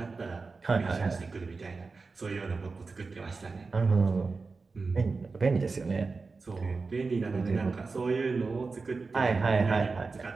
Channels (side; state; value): left; quieter; 4.2 dB